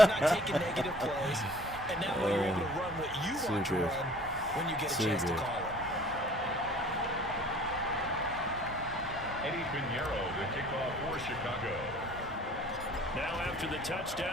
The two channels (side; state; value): both; normal; correlation 0.50